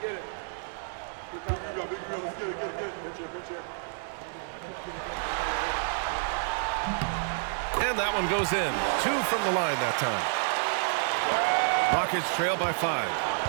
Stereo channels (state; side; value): silent; left; digital silence